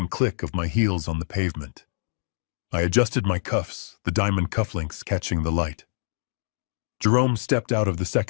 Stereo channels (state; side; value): silent; right; digital silence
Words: click of my heels on the pavement. I adjusted my cuffs, the diamond cufflinks catching the light. Jerome stepped out of the